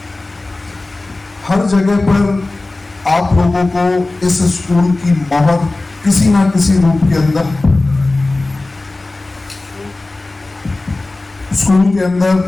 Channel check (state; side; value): quieter; right; 3.0 dB